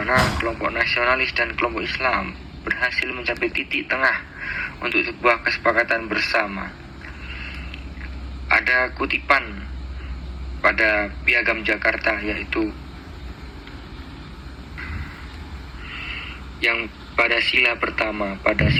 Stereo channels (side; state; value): both; identical; correlation 1.00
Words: kelompok nasionalis dan kelompok Islam berhasil mencapai titik tengah untuk sebuah kesepakatan bersama. Ada kutipan pada Piagam Jakarta, yaitu yang pada sila pertama, pada